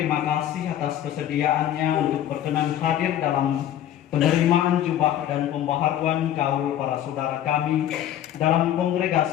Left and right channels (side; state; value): right; quieter; 11.4 dB